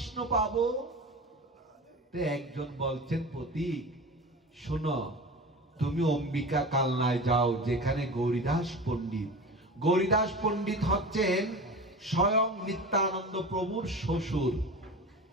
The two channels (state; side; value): normal; both; correlation 0.32